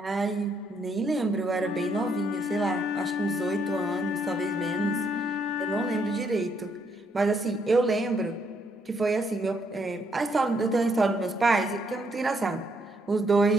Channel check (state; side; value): normal; both; correlation 0.73